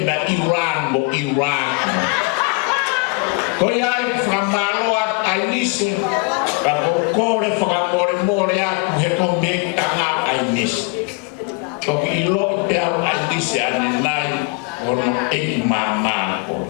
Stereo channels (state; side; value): quieter; right; 30.0 dB